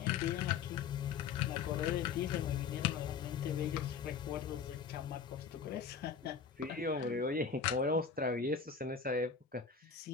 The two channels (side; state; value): right; quieter; 6.2 dB